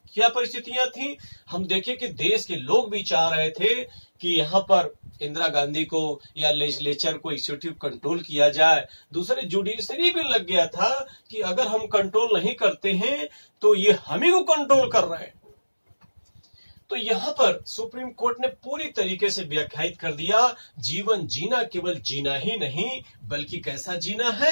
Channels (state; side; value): inverted; both; correlation -1.00